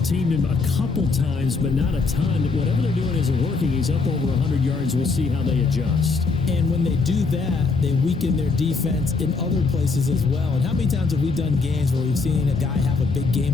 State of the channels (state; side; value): quieter; right; 4.2 dB